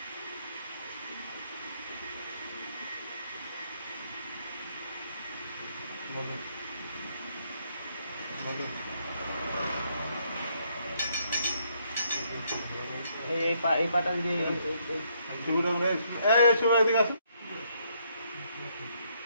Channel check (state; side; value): inverted; both; correlation -0.72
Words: এই পাটা দিয়ে এদিকে আসো